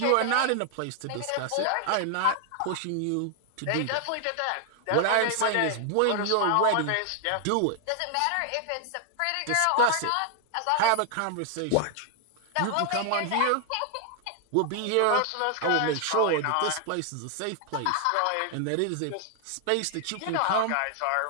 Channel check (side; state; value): both; different; correlation 0.00